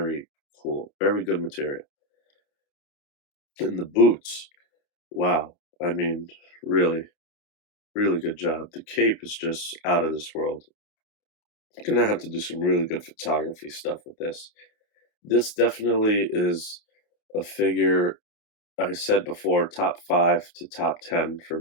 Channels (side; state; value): right; late; 29 ms